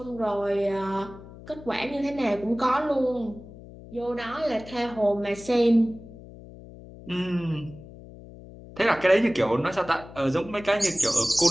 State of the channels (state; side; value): noise; left; hum, 17 dB below the sound